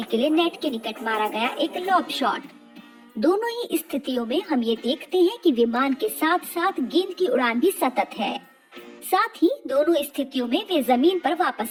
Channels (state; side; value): identical; both; correlation 1.00